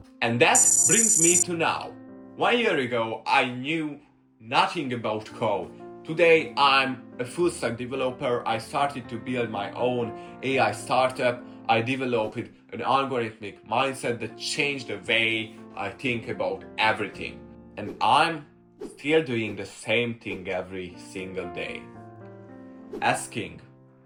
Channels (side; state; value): both; identical; correlation 1.00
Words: And that brings me to now. 1 year ago, I knew nothing about code. Today, I'm a full stack developer. I started to build my own AI startup. I developed an algorithmic mindset that changed the way I think about everything. And I'm still doing the same thing every single day. Asking